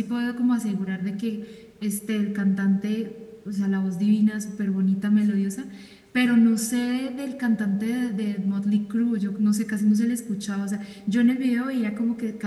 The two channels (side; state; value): both; identical; correlation 1.00